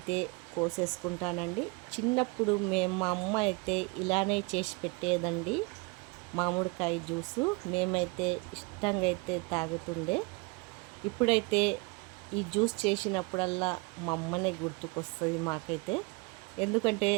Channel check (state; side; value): quieter; left; 28.5 dB